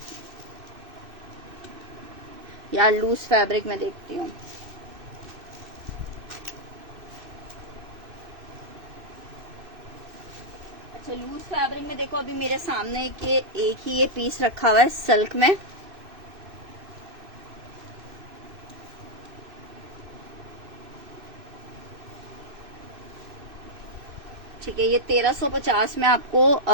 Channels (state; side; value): late; left; 2.6 ms